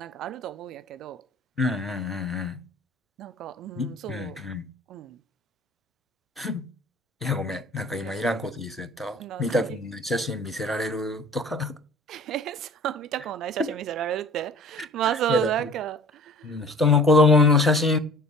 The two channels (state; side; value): normal; both; correlation 0.46